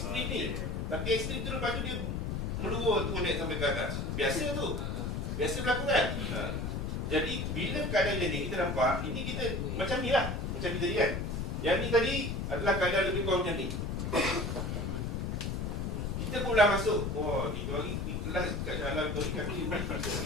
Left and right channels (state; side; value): noise; left; rumble, 2 dB below the sound